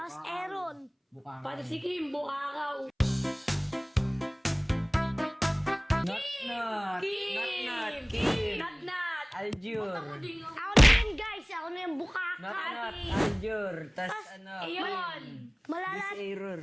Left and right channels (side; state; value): both; identical; correlation 1.00